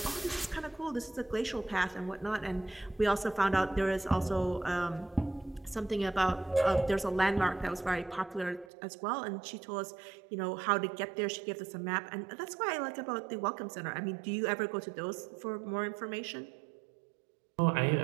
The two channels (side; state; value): left; drops out; at 8.7 s